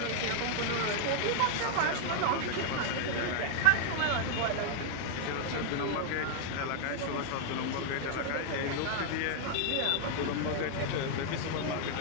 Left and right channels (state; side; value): different; both; correlation 0.00